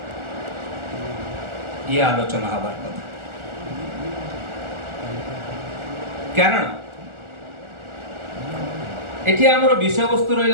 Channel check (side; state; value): left; late; 1.4 ms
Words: ये आलोचना हबार कथा कारण एठी आमर विषय वस्तु